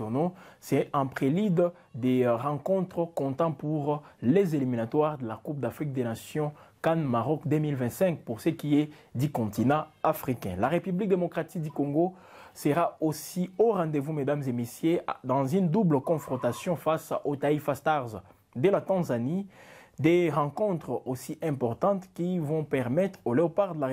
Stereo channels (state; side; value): identical; both; correlation 1.00